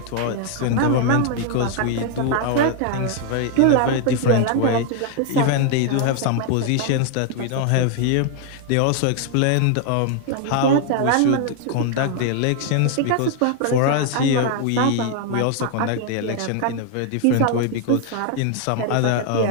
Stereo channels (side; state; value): both; different; correlation 0.00